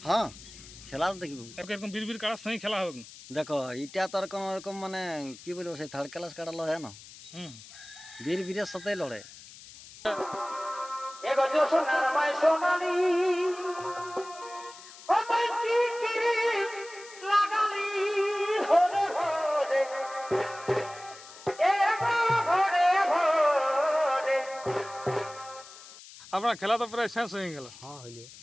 হ্যাঁ, খেলা তো দেখবো। এরকম বীর কাড়ার সঙ্গে খেলা হবে না। দেখো এটা তো আর কোনো রকম মানে কি বলবো, সেই থার্ড ক্লাস কাড়া লড়ে না, হুম বীরের সাথেই লড়ে। আপনার খেলা তো প্রায় শেষ হয়ে গেল। হ্যাঁ হইলে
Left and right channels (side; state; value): left; noise; hiss, 18 dB below the sound